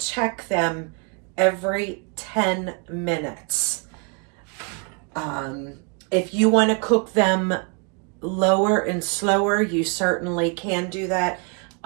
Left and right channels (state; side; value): quieter; left; 36.0 dB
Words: them every 10 minutes. If you want to cook them lower and slower, you certainly can do that.